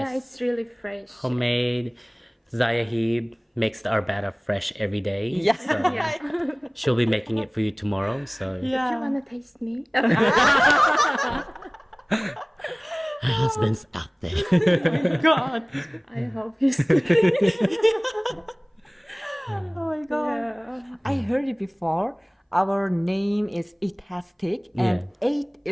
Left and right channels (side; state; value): both; identical; correlation 1.00